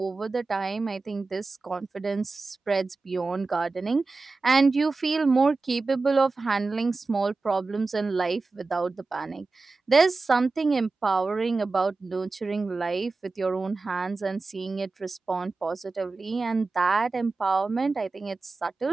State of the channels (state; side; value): quieter; left; 3.8 dB